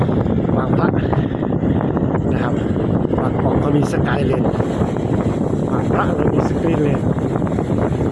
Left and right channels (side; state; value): both; identical; correlation 1.00